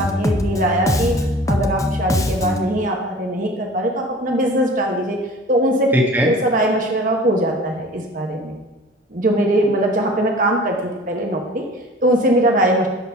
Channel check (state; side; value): normal; both; correlation 0.43